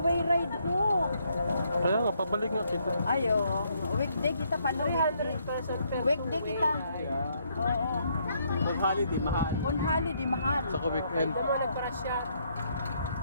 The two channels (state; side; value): inverted; both; correlation -0.72